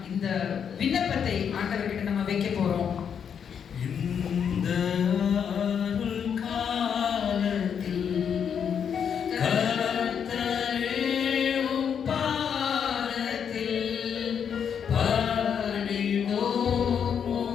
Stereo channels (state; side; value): quieter; right; 7.6 dB